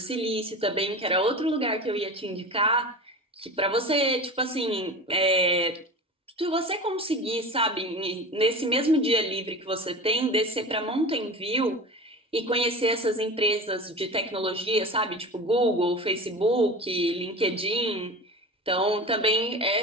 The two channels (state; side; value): normal; both; correlation 0.33